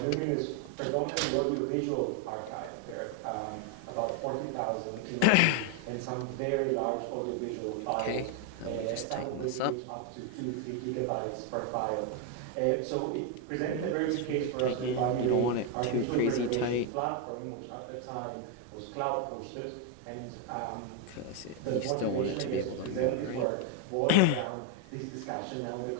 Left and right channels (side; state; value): both; different; correlation 0.01